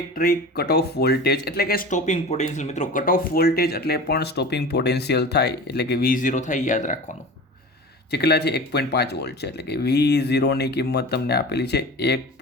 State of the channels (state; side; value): normal; both; correlation 0.35